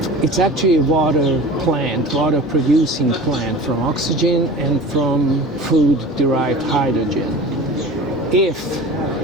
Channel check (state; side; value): normal; both; correlation 0.38